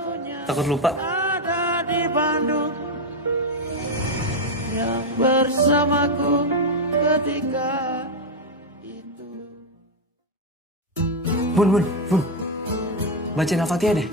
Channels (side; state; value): both; normal; correlation 0.05